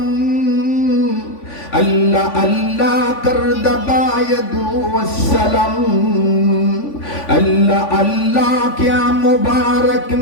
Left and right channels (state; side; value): late; right; 3.5 ms